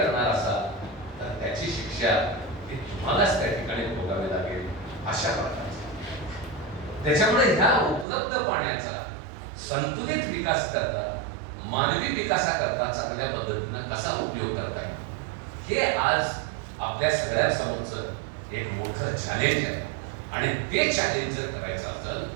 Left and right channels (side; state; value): left; drops out; at 8.1 s